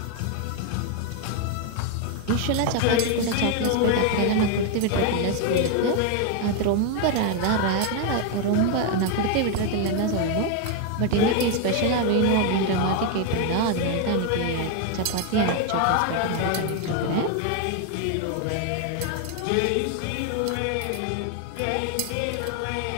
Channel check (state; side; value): different; both; correlation 0.01